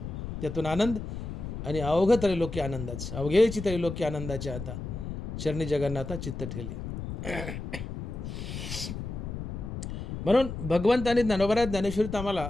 त्यातून आनंद आणि अवघ त्रैलोक्य आनंदाचं, अवघेची त्रैलोक्य आनंदाचे आता चरणी जगन्नाथा चित्त ठेले. म्हणून भगवंत आणि ज्ञानोबा ज्ञानेश्वरीत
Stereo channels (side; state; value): left; noise; rumble, 7 dB below the sound